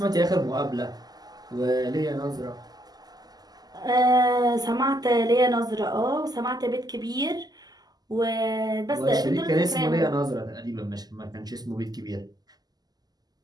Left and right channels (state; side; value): late; left; 0.19 ms